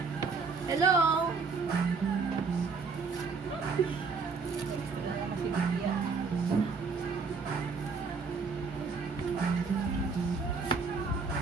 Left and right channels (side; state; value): left; quieter; 4.8 dB